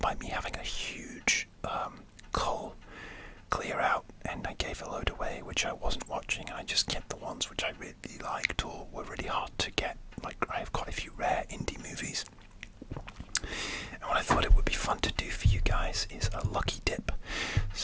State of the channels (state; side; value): identical; both; correlation 1.00